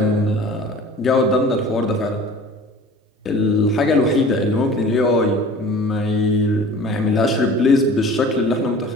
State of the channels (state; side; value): normal; both; correlation 0.43